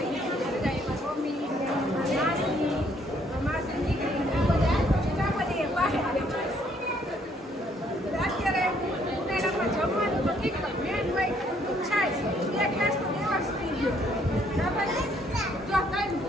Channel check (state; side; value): normal; both; correlation 0.67